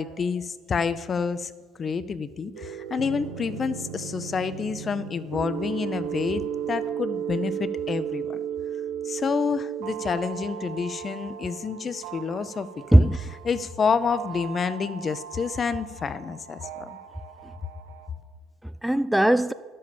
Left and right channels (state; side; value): normal; both; correlation 0.82